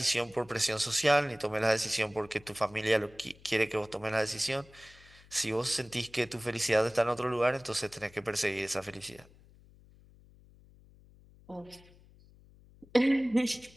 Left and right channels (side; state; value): left; noise; hum, 25 dB below the sound